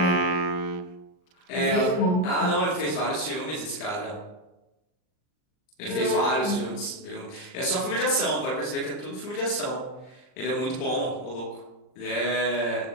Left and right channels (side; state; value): right; late; 39 ms